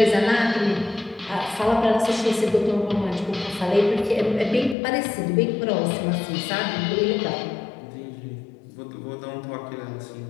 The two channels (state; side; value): drops out; right; at 4.8 s